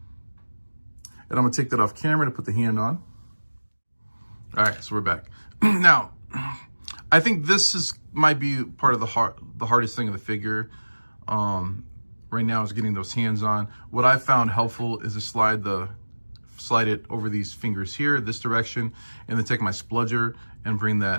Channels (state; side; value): inverted; both; correlation -1.00